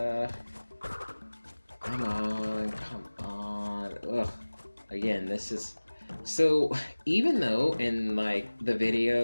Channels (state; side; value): inverted; both; correlation -1.00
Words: come on. Ugh. Again, this is so. Even though in like the